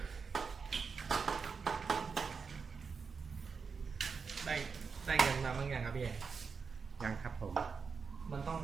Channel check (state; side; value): quieter; left; 5.4 dB